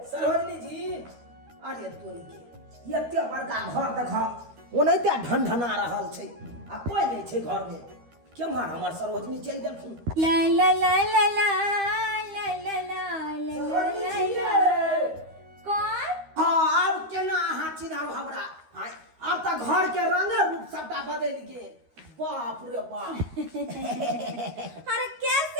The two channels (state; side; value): late; left; 13 ms